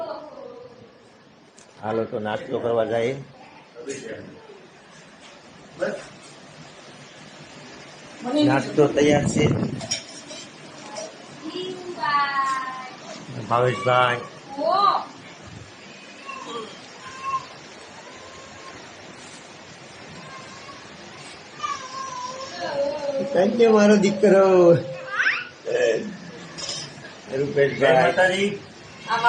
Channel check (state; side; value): identical; both; correlation 1.00